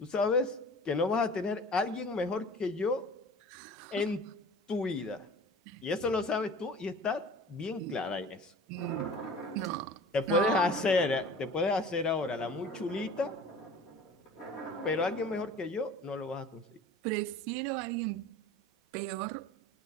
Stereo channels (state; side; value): normal; both; correlation 0.42